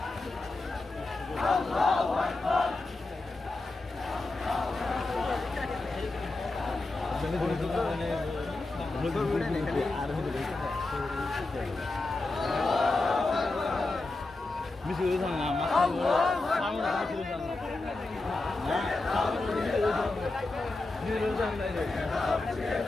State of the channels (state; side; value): quieter; right; 3.2 dB